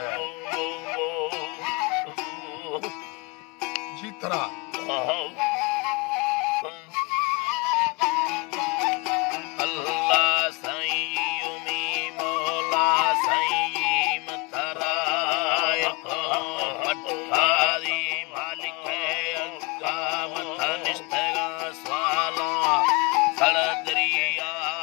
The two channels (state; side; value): quieter; right; 27.5 dB